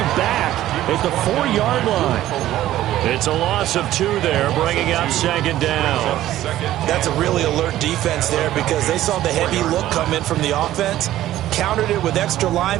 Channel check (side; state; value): left; quieter; 13.8 dB